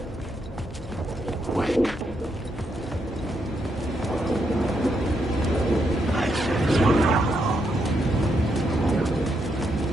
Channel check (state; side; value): normal; both; correlation 0.79